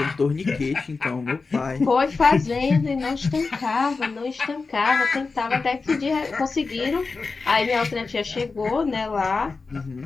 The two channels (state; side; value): quieter; right; 4.2 dB